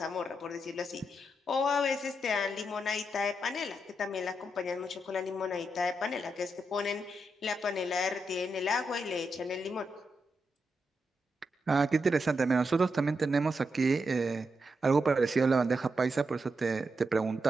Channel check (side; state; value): both; normal; correlation 0.84